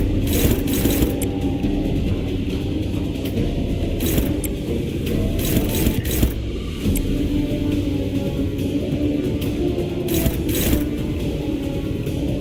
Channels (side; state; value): both; identical; correlation 1.00